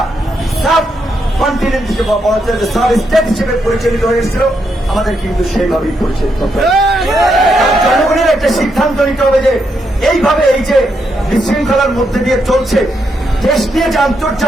সাব কন্টিনেন্ট হিসেবে সাব স্টেট হিসেবে পরিচালিত হয়েছিল, আমাদের কিন্তু সেইভাবেই পরিচালিত হবে। জনগণের একটা সিদ্ধান্ত নিতে হবে যে এইভাবে এই যে বিশৃঙ্খলার মধ্যে দিয়ে চলছে, দেশ নিয়ে যে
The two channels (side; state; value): both; normal; correlation 0.80